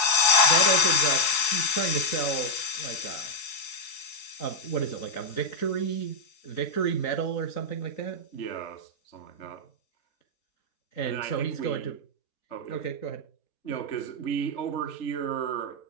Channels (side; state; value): right; late; 4.6 ms